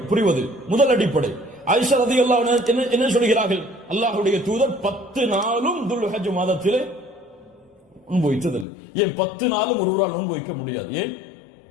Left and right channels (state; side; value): drops out; right; at 8.7 s